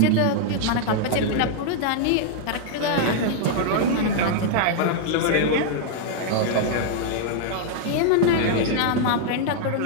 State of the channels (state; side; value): different; both; correlation -0.01